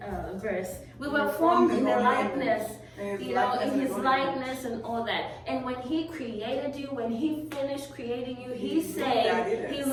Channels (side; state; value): both; identical; correlation 1.00